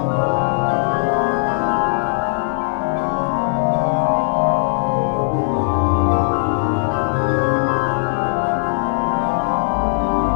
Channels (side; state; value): right; silent; digital silence